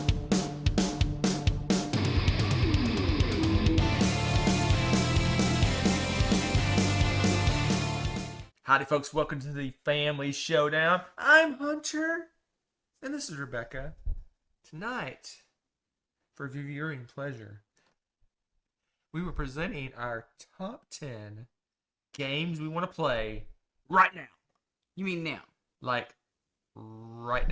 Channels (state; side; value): identical; both; correlation 1.00